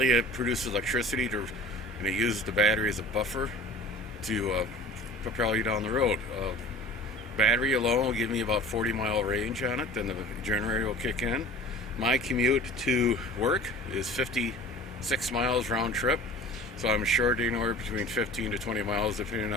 it produces electricity and it uses the battery as a buffer to propel you down the road. Battery alone will give me about 40-mile range on it, then the generator will kick in. My commute to work is 56 miles round trip, so I'm short anywhere between 15 to 20 miles depending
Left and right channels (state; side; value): normal; both; correlation 0.43